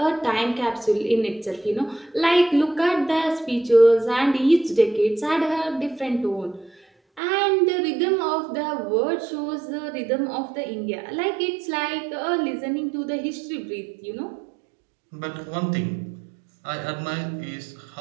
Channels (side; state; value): left; drops out; at 7.2 s